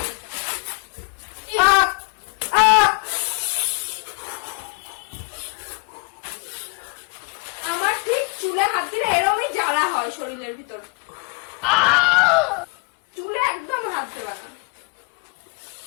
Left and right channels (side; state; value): right; quieter; 31.6 dB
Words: আমার ঠিক চুলে হাত দিলে এরমই জ্বালা হয় শরীরের ভিতর। চুলে একদম হাত দেবে না।